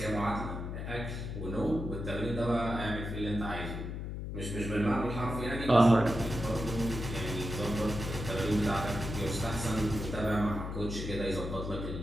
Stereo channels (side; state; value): left; noise; hum, 5 dB below the sound